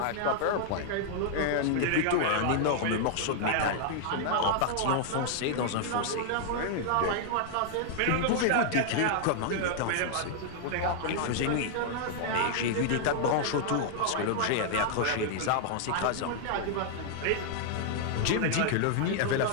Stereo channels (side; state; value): both; different; correlation -0.01